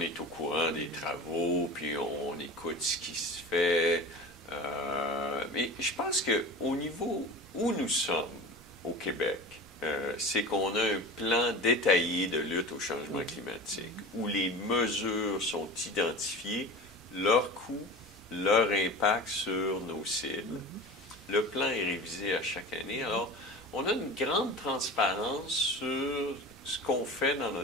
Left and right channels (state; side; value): noise; right; rumble, 27 dB below the sound